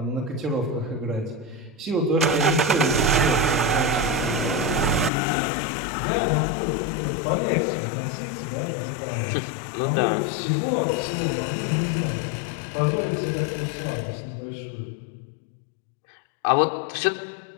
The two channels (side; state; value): right; drops out; at 5.1 s